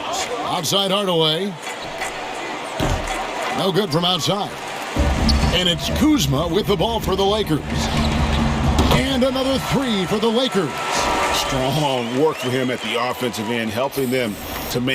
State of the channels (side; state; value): both; identical; correlation 1.00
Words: Outside Hardaway. No good from outside. And it's Kuzma with the ball for the Lakers. And another three for the Lakers. Strong work for him at the offensive end, helping them to